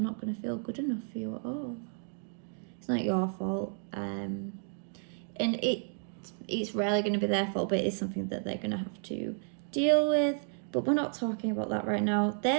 going to feel good enough for you at all. It's not your fault, and it's rarely going to be their fault, but it's something that they're going to have to deal with. But we're not talking about that right now.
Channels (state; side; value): silent; left; 56 dB below the other